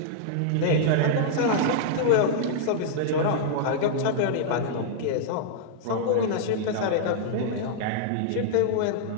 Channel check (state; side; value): different; both; correlation -0.01